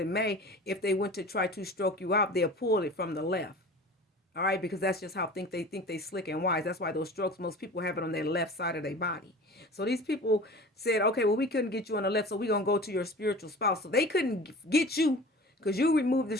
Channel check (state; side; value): normal; both; correlation 0.40